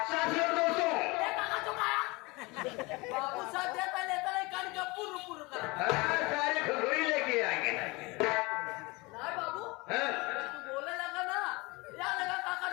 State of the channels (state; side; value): quieter; right; 24.6 dB